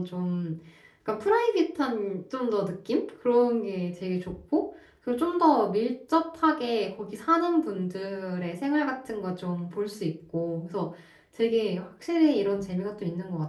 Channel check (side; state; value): both; identical; correlation 1.00